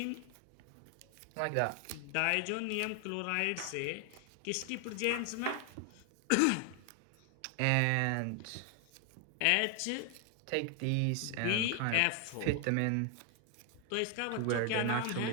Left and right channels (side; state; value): both; different; correlation 0.00